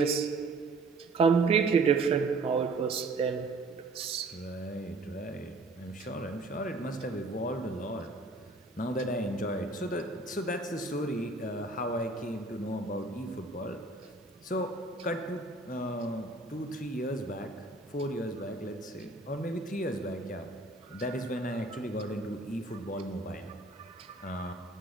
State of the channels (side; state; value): left; quieter; 3.2 dB